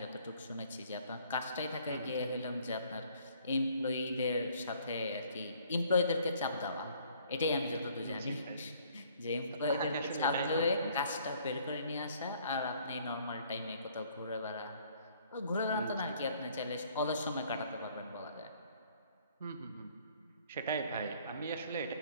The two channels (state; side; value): inverted; both; correlation -0.60